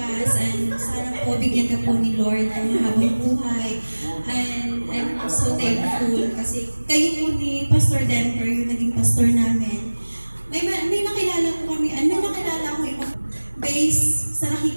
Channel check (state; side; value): inverted; both; correlation -1.00